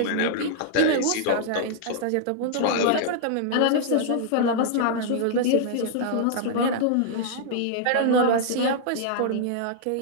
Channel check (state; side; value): different; both; correlation -0.01